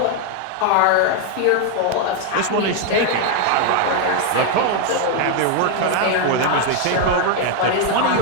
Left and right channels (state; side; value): different; both; correlation 0.01